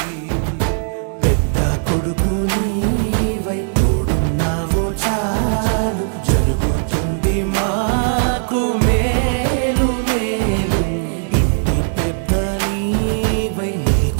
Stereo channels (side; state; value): left; silent; digital silence